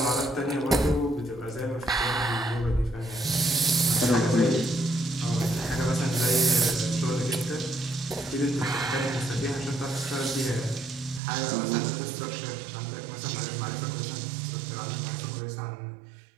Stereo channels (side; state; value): left; drops out; at 11.2 s